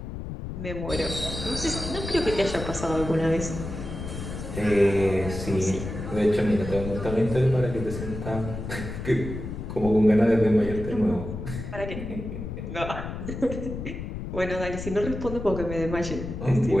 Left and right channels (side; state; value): left; noise; rumble, 7 dB below the sound